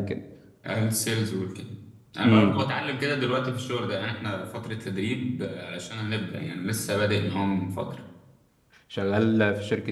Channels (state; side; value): identical; both; correlation 1.00